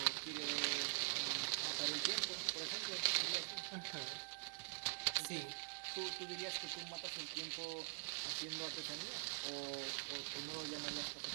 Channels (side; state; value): left; silent; digital silence